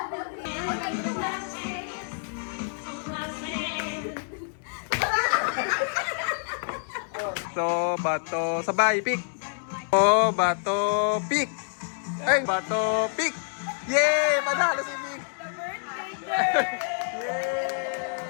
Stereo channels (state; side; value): silent; right; 60 dB below the other